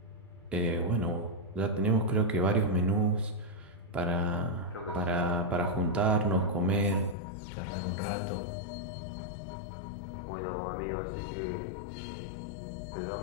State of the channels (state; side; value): drops out; right; at 7.2 s